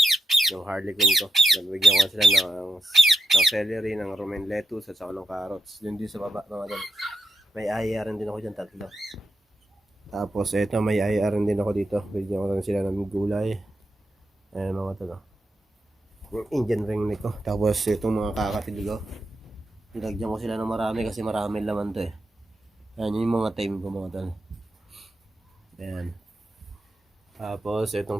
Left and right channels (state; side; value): normal; both; correlation 0.86